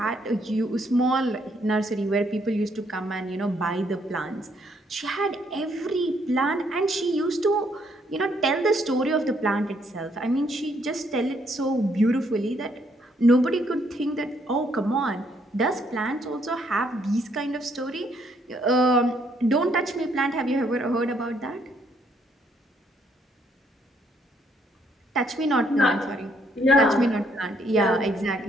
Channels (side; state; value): both; normal; correlation 0.70